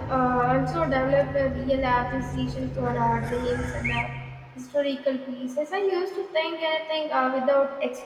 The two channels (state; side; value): identical; both; correlation 1.00